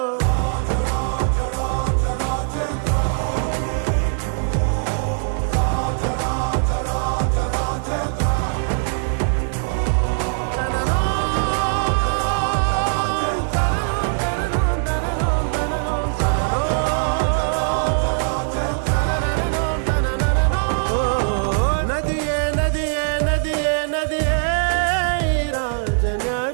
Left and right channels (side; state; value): left; silent; digital silence